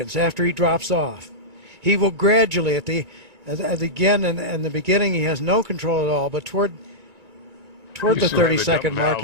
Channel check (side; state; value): left; late; 2.3 ms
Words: after he drops off. He will gradually, again, in the beginning, he has no control at all, but toward the 30-second mark,